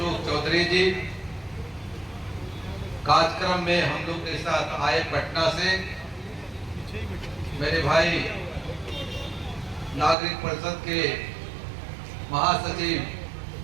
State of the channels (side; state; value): left; drops out; at 10.2 s